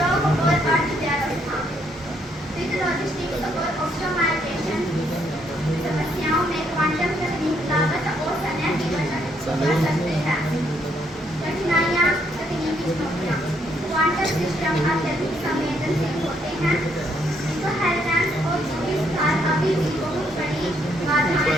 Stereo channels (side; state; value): both; normal; correlation 0.72